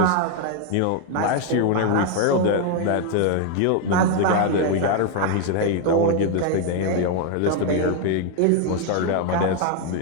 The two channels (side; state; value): both; different; correlation 0.00